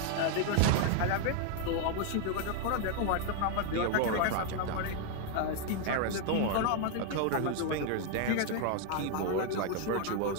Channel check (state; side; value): different; both; correlation 0.00